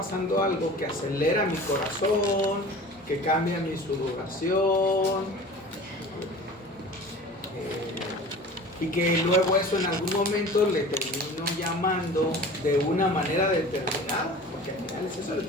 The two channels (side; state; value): both; normal; correlation 0.40